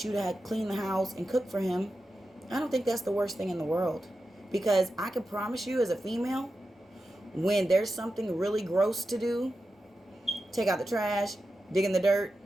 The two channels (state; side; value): normal; both; correlation 0.91